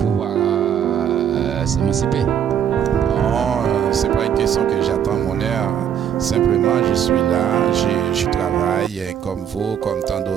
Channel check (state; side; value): quieter; left; 8.9 dB